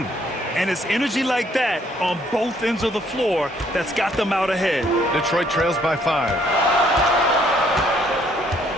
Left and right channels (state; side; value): normal; both; correlation 0.66